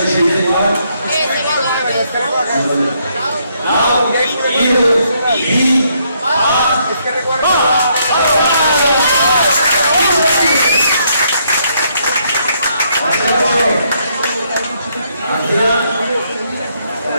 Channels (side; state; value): both; inverted; correlation -0.73